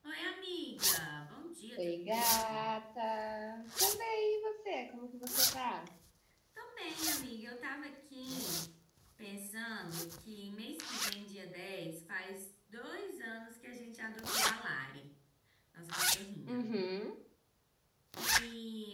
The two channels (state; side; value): identical; both; correlation 1.00